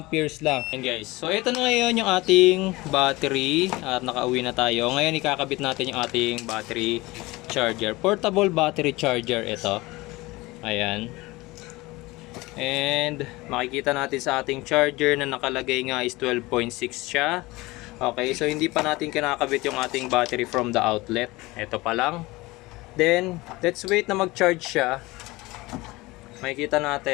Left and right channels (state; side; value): quieter; right; 21.2 dB